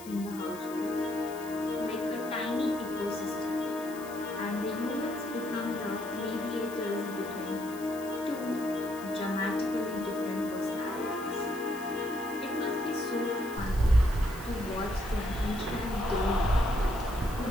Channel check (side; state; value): left; noise; hiss, 17 dB below the sound